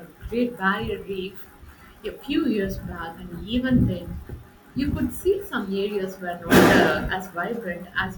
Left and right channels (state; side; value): identical; both; correlation 1.00